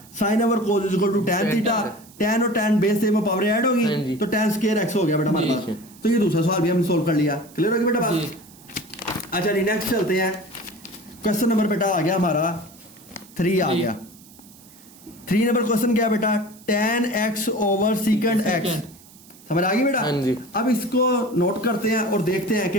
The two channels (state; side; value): noise; right; hiss, 23 dB below the sound